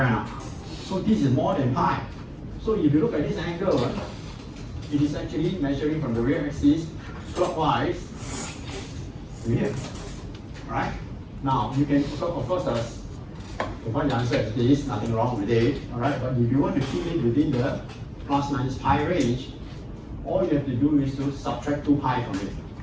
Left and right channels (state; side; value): identical; both; correlation 1.00